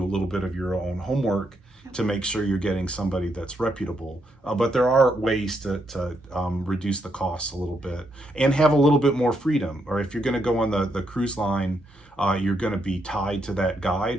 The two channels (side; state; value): both; normal; correlation 0.78